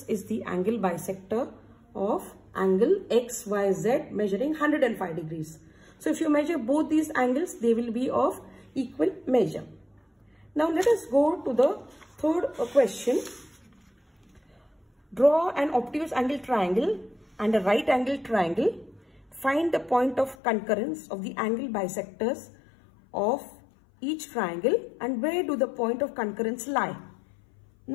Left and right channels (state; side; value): drops out; right; at 20.4 s